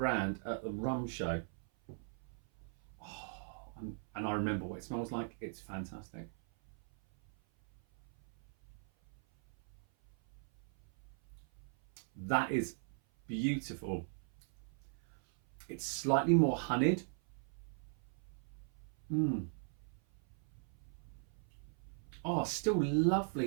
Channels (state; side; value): silent; left; 52 dB below the other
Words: at the rum show. Oh, and I remember what it smells like. It's fantastic. That is beautiful. It's slightly more honeyed. Oh, still